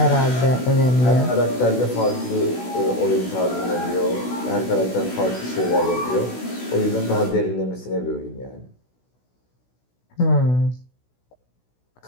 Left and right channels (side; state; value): right; late; 16 ms